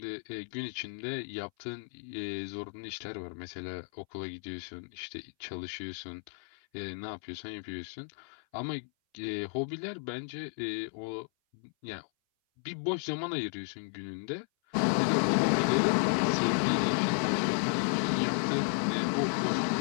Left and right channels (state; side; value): silent; right; 56 dB below the other